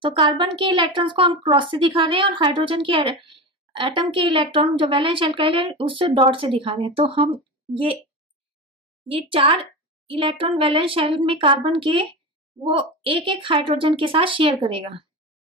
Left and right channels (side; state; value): both; normal; correlation 0.24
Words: तो कार्बन के इलेक्ट्रॉन्स को हम क्रॉस से दिखा रहे हैं, और हाइड्रोजन के एटम के इलेक्ट्रॉन जो वैलेंस शेल का है उससे डॉट से दिखा रहे हैं। तो हम ये 4 इलेक्ट्रॉन वैलेंस शेल में कार्बन के वो एक एक हाइड्रोजन के साथ शेयर करेगा।